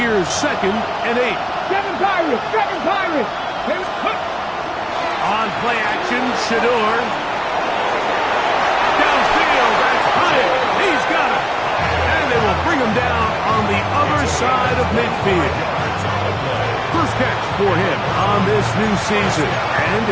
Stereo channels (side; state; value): both; identical; correlation 1.00